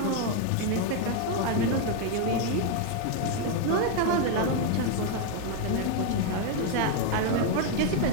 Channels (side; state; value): both; different; correlation 0.01